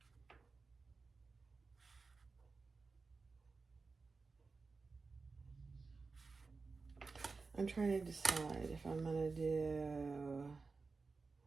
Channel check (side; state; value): left; quieter; 4.2 dB